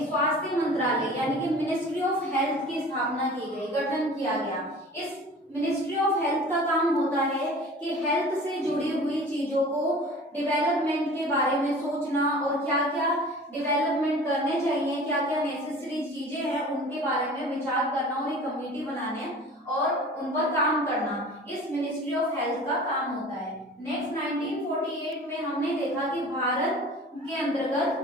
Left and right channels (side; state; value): both; normal; correlation 0.42